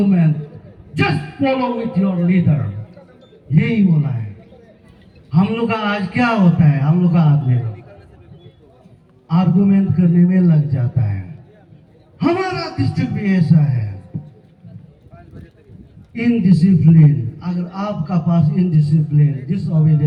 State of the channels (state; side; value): identical; both; correlation 1.00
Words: just follow with your leader. यही बोला है। हम लोग का आज क्या होता है? हम लोग का आदमी आर्गुमेंट करने में लग जाता है। हमारा डिस्ट्रिक्ट भी ऐसा है, इनडिसिप्लिन। अगर आपका पास इनडिसिप्लिन,